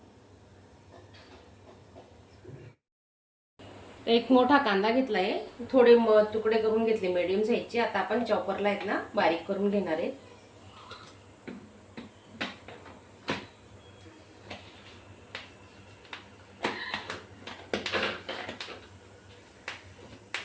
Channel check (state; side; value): identical; both; correlation 1.00